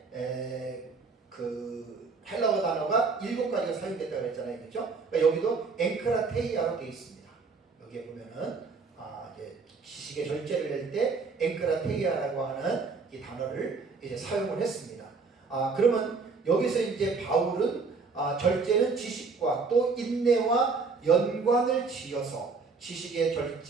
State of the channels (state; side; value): quieter; left; 4.5 dB